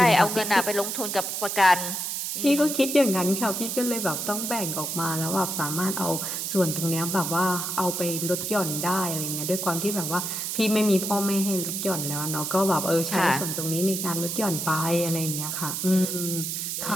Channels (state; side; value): noise; right; hiss, 3 dB below the sound